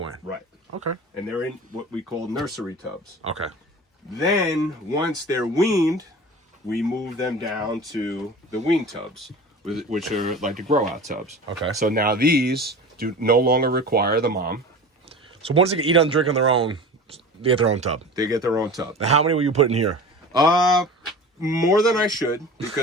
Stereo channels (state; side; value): normal; both; correlation 0.36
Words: Right. Okay. And they're in what we call nursery tubs. Okay. Then, once they're weaned, we move them down to the wean tubs, which are like the grow-out tubs. Okay. So now these do no longer require the mom. So once they can eat and drink on their own, they get their own tub. They get their own tub. Now, how many will you put in here? More than I should,